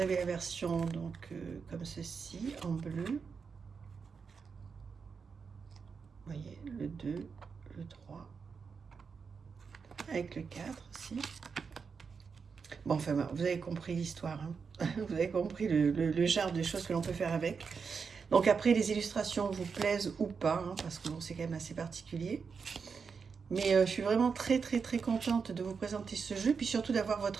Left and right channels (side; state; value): left; quieter; 5.6 dB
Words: avez la version donc comme ceci en bleu. Vous voyez le 2, le 3 avec le 4 aussi. Bon enfin vous avez compris l'histoire, hein. Vous avez compris le genre de choses que l'on peut faire avec. Donc après les illustrations vous plaisent ou pas, hein, parce que bon, c'est quand même assez particulier. Mais je suis vraiment très contente de vous présenter ce jeu, puis surtout d'avoir